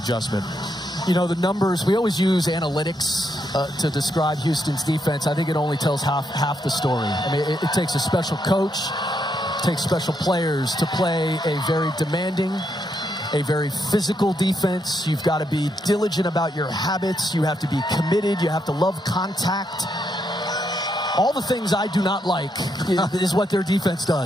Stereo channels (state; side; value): normal; both; correlation 0.79